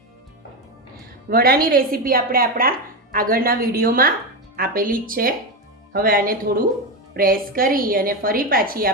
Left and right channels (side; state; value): both; normal; correlation 0.13